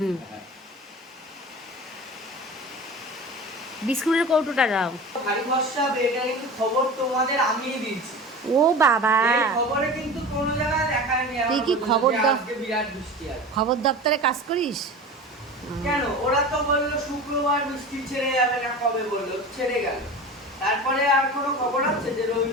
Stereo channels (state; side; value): normal; both; correlation 0.33